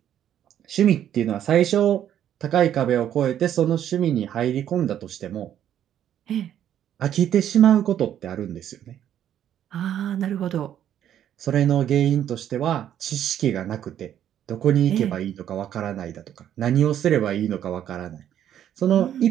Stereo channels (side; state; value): left; quieter; 10.4 dB